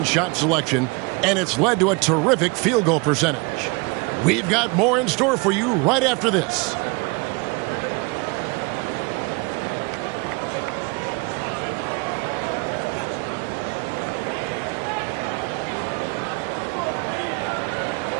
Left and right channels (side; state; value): left; quieter; 28.8 dB